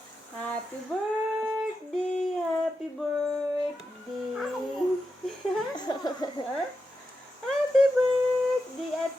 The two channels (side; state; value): both; normal; correlation 0.88